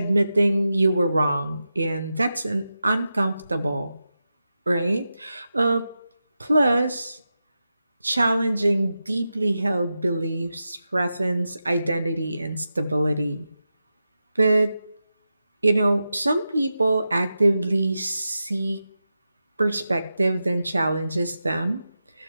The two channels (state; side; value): inverted; both; correlation -0.91